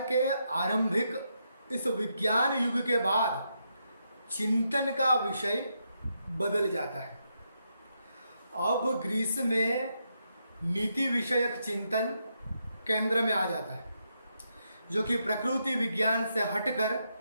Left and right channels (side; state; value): both; inverted; correlation -0.81